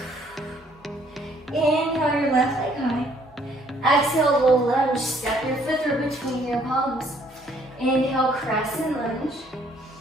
Inhale your left leg high. Exhale, low lunge. Step your foot through between your palms. Inhale, crescent lunge.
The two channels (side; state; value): both; normal; correlation 0.63